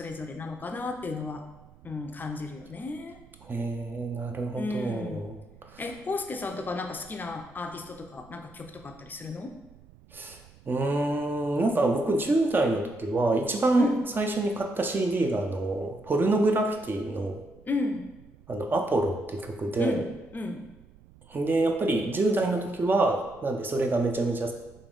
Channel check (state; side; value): noise; right; rumble, 24 dB below the sound